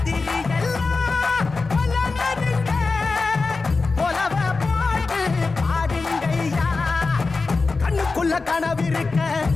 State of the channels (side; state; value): right; quieter; 4.0 dB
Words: எல்லாம் கொல்லனதுங்க கொலவ போட்டு பாடுங்கய்யா கண்ணுக்குள்ள கனவிருக்க